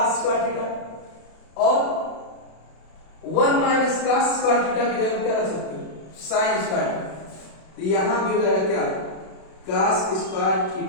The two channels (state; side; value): late; right; 32 ms